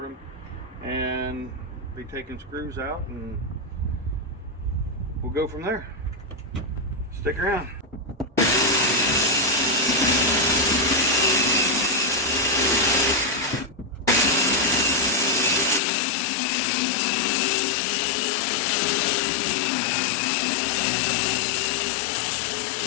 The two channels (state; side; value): drops out; right; at 15.8 s